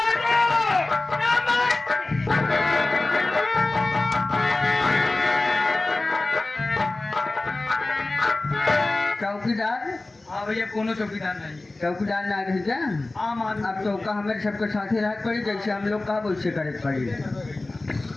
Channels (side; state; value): right; quieter; 3.0 dB